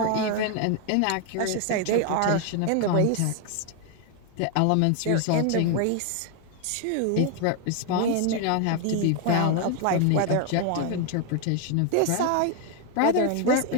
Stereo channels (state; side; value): different; both; correlation 0.01